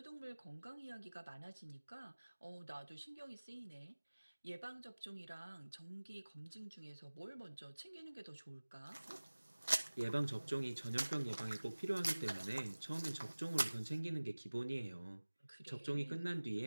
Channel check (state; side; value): inverted; both; correlation -1.00